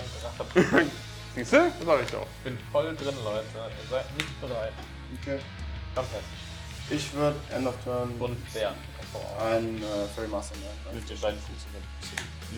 Drachen. Siehst du? Das sag ich doch. Ich bin voll drin, Leute. Ihr seid nicht bereit. Okay. Fantastisch. Ich würde End of Turn Und Bären. ein Fairy Master nehmen. Mit den beiden Fuß.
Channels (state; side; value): identical; both; correlation 1.00